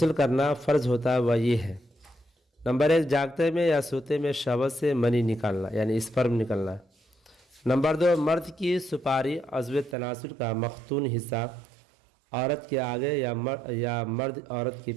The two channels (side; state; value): left; drops out; at 10.0 s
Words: کرنا فرض ہوتا ہے وہ یہ ہے۔ نمبر 1، جاگتے میں یا سوتے میں شہوت سے منی نکالنا یعنی اسپرم نکلنا۔ نمبر 2، مرد کی سپاری عضو تناسل کا مختون حصہ عورت کے آگے یا مرد عورت کے